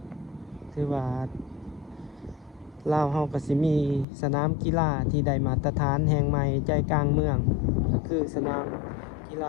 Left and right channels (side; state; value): right; drops out; at 4.0 s